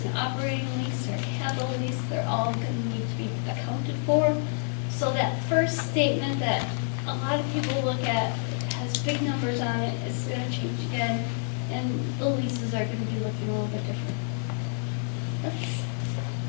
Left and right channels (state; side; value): silent; right; digital silence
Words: an operating lease or a capital lease, they're all gonna need to be accounted for. So that first statement that a lot of people look at has big numbers on it, it's gonna change again, and the leases are gonna be looking a little bit different. That's